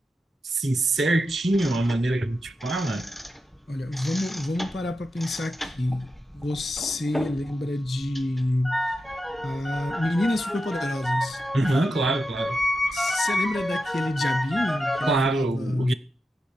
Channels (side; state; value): both; normal; correlation 0.89